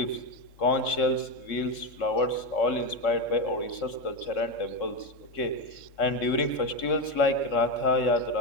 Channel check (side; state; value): right; late; 3.7 ms